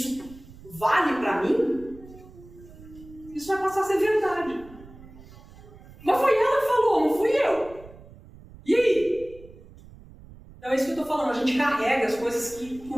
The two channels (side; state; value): right; noise; rumble, 20 dB below the sound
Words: vale para mim, isso vai passar a ser verdade. Mas foi ela que falou, não fui eu. E aí? Então é isso que eu estou estou falando, a gente carrega as coisas que